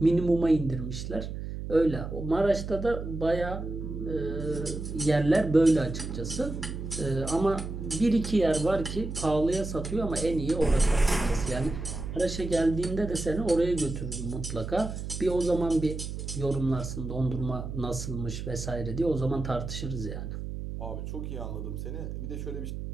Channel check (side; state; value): right; noise; hum, 6 dB below the sound